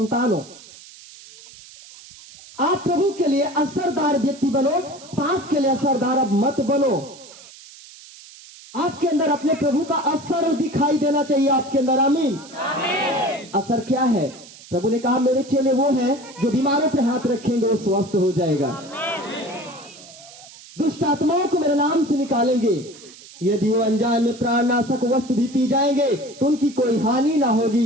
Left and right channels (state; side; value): noise; right; hiss, 19 dB below the sound